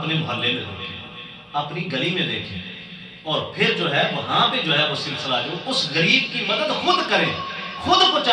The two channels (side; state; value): both; identical; correlation 1.00